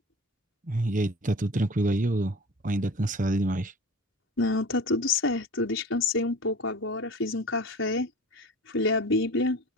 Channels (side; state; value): both; normal; correlation 0.38